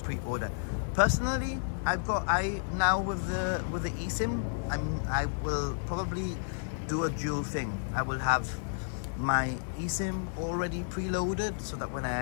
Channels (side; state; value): right; silent; digital silence